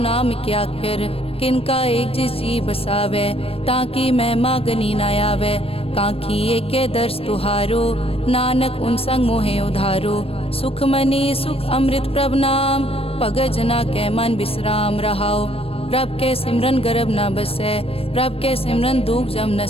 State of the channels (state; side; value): late; right; 0.28 ms